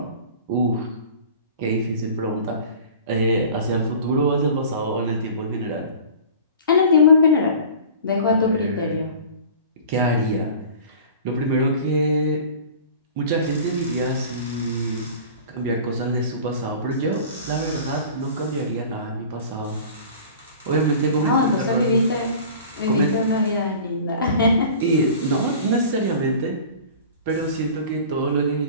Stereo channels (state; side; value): inverted; both; correlation -0.41